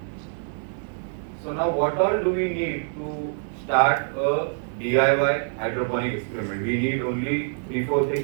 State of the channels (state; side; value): silent; left; digital silence